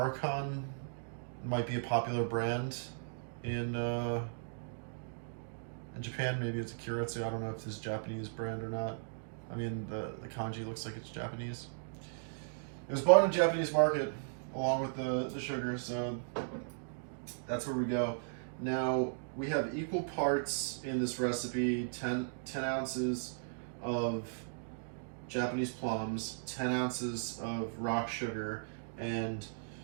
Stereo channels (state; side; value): silent; left; digital silence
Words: might be a popular brand in Japan. Maybe it's a Kyoritsu. I don't know if this is a Japanese brand or not. The kanji looks like it's Japanese. It was bought in the Japanese market along with the sugar, so that's where we go. Now, we have equal parts in this recipe, 10 ounces of Japanese plums, 10 ounces of rock sugar, and